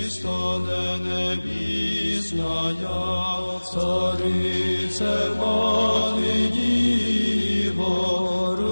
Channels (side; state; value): both; inverted; correlation -1.00